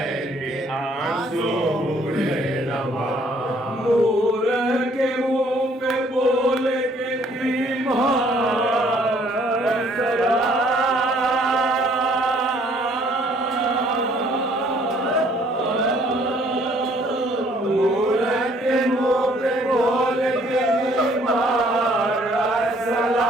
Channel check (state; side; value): normal; both; correlation 0.62